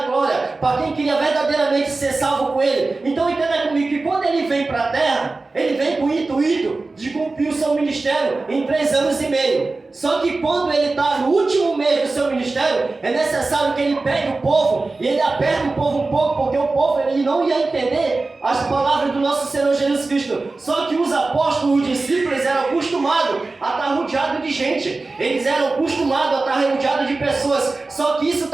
glória, para quem queria verdadeiramente ser salvo com Ele. Então entenda comigo que quando Ele vem para a terra, Ele vem com o intuito de cumprir o seu ministério em 3 anos e meio. Só que quando Ele está no último mês do seu ministério, é necessário que Ele pegue o povo e Ele aperte o povo um pouco, porque o povo ele não ia entender as palavras do nosso Senhor Jesus Cristo. Só que os apóstolos, os discípulos, eram acostumados a estar rodeados de gente. Eles eram acostumados a estar rodeados de pessoas. Só que isso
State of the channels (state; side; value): quieter; left; 3.5 dB